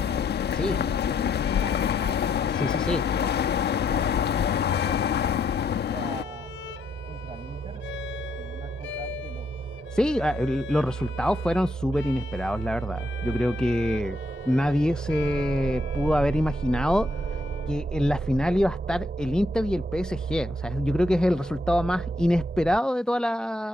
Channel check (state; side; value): normal; both; correlation 0.75